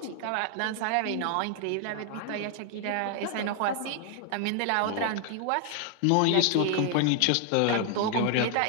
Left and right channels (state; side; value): different; both; correlation 0.00